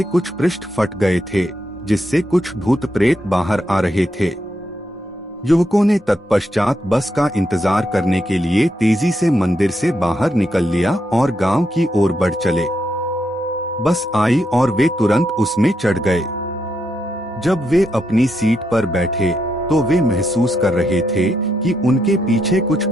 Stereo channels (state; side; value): normal; both; correlation 0.81